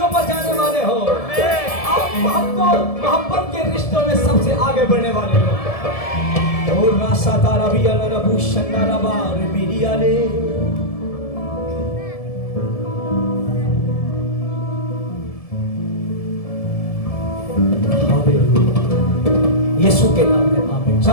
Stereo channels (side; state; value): right; late; 1.7 ms